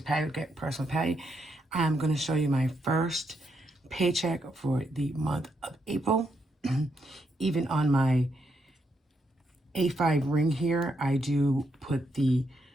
Patty, Personal Patty. I'm going to show you my first paycheck for the month of April. Even on my A5 ring here, I do put the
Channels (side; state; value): both; normal; correlation 0.79